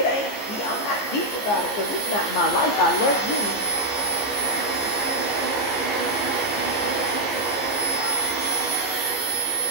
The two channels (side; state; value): right; late; 15 ms